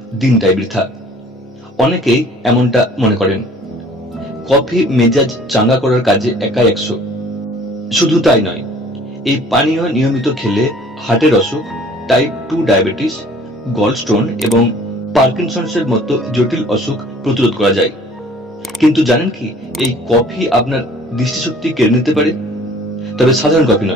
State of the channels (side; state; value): both; normal; correlation 0.52